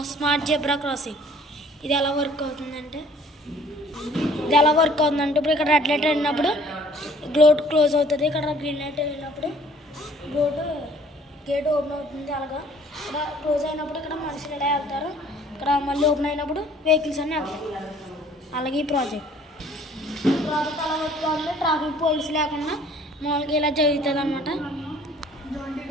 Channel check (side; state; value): both; normal; correlation 0.56